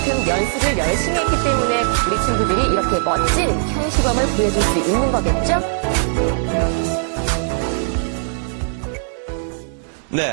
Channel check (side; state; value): left; silent; digital silence